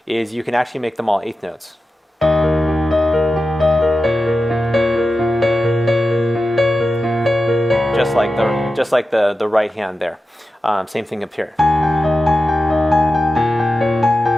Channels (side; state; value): both; normal; correlation 0.92